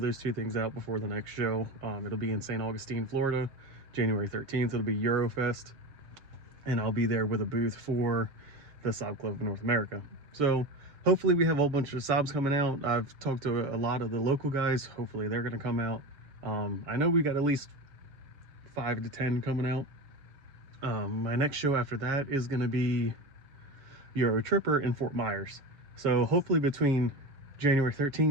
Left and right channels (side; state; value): left; late; 6.9 ms